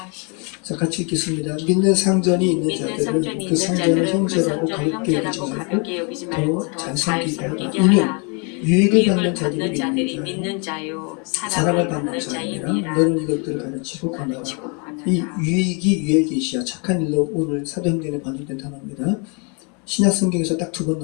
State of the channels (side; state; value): right; quieter; 34.9 dB